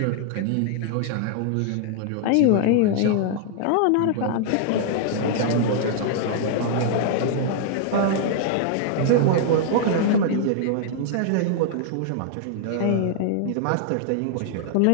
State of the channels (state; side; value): different; both; correlation -0.01